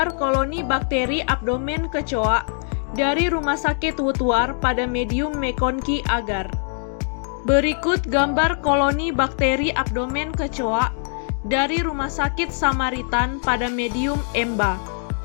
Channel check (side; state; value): right; silent; digital silence